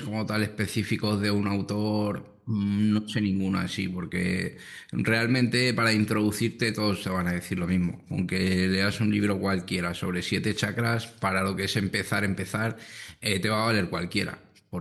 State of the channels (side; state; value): both; identical; correlation 1.00